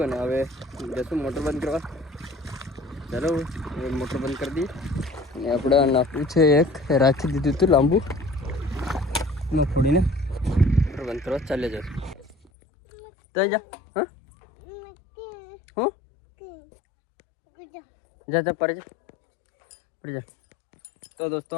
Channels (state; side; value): drops out; right; at 12.5 s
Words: અને હવે જશું મોટર બંધ કરવા. ચાલો હવે મોટર બંધ કરી દઈએ. અને આપણે નાખવું છે એક રાખી દીધું હતું લાંબુ ન ફોડીને મોટર બંધ કરવા ચાલે જશું. તો જા હા હું જા પડી જા. તો દોસ્તો